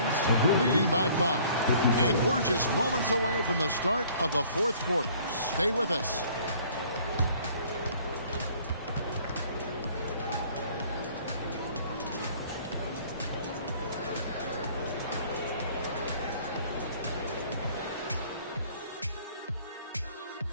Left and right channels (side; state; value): both; inverted; correlation -0.56